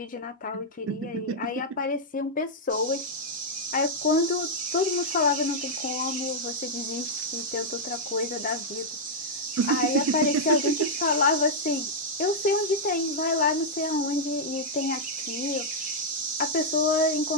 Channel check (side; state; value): both; normal; correlation -0.05